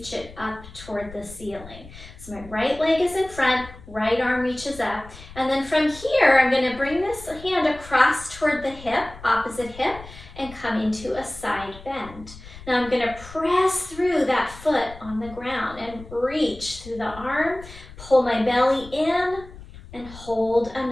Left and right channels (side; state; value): left; noise; rumble, 17 dB below the sound